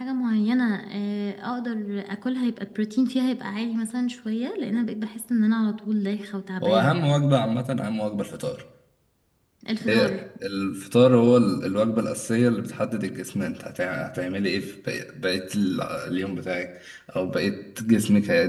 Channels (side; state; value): both; identical; correlation 1.00